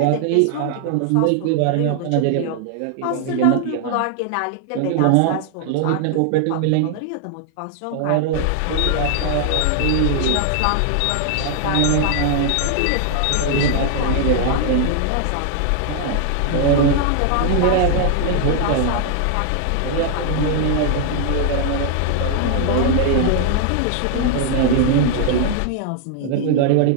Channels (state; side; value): different; both; correlation 0.00